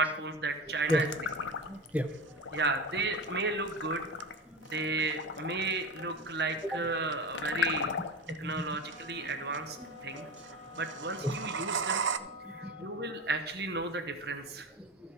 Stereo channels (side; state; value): both; normal; correlation 0.26